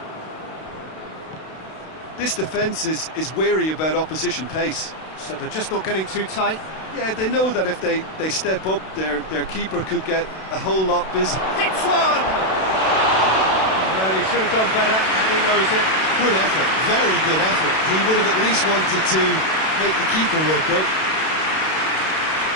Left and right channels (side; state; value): right; late; 32 ms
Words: This defence is wary about opposition pace. So they're just not getting too tight. Yeah, they know that if they step up, their keeper could get a whole lot busy. Hits one! Well, he should have done better, and he knows it. Good effort, very good effort. He would have at least wanted to make the keeper work out.